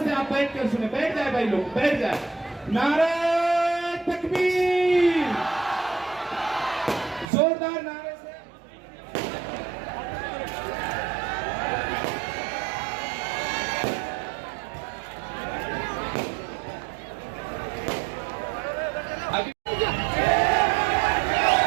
से आप बैठ कर सुने, बैठ जाए भाई लोग, बैठ जाए। नारे तकबीर, जोरदार नारे से।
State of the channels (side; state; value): left; drops out; at 7.2 s